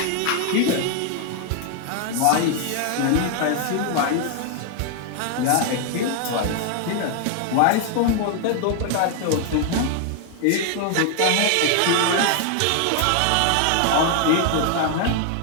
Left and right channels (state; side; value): different; both; correlation 0.00